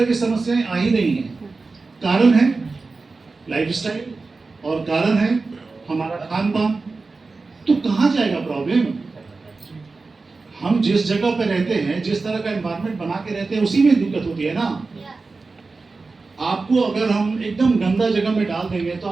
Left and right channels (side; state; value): left; quieter; 3.9 dB